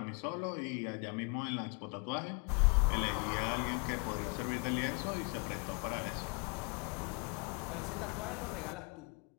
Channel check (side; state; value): right; quieter; 33.0 dB